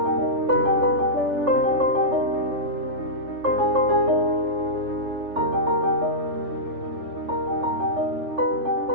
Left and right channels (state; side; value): late; left; 3.4 ms